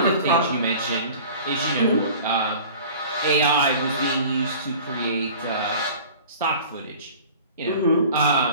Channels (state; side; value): inverted; both; correlation -0.43